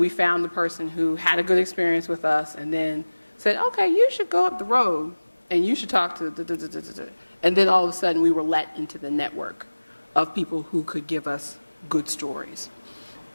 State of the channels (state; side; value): inverted; both; correlation -1.00